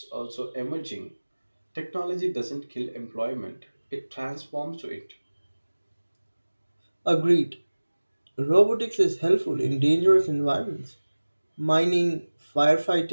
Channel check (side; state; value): both; inverted; correlation -1.00